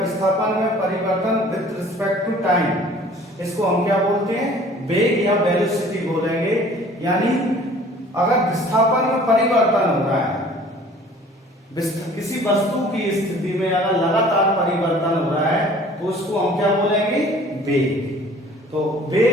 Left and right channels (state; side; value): normal; both; correlation 0.50